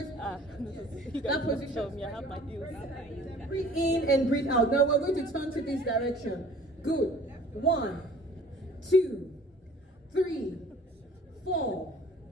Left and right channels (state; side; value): normal; both; correlation 0.50